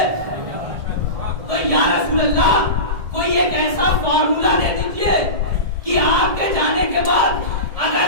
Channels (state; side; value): late; left; 1.7 ms